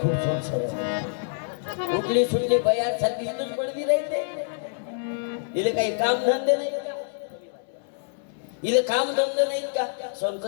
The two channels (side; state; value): right; silent; 61 dB below the other